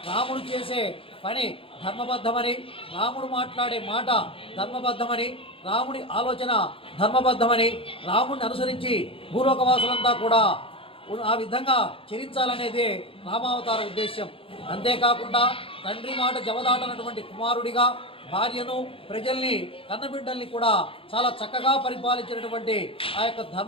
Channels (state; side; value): late; right; 0.26 ms